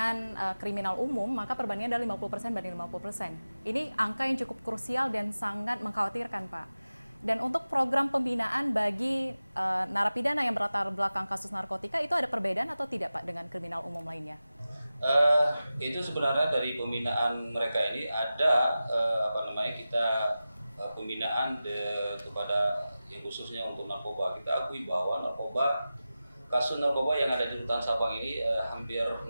kriminal umum, maka perbandingannya adalah 50% banding 50%. Ini angka yang cukup krusial dan sangat mengkhawatirkan, Pak. Dan untuk program pembinaan bagi narapidana yang berlatar belakang kasus narkotika, itu ada perbedaan atau tidak, Pak, dengan kriminal umum lainnya? Itu sebenarnya dari pembinaan mereka ini ada kita pembinaan kepada yang khususnya untuk narkoba. Kita akui bahwa kasus narkoba yang ada di rutan Sabang ini hampir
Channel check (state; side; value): inverted; both; correlation -0.95